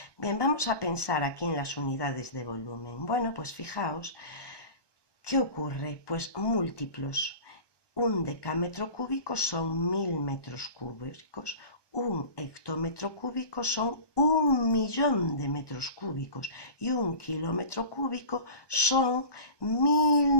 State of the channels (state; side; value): late; right; 1.2 ms